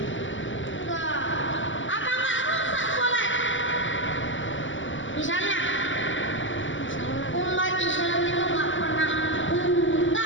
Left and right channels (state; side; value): late; right; 0.55 ms